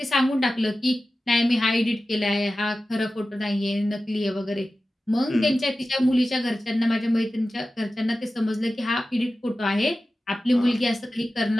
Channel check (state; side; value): normal; both; correlation 0.94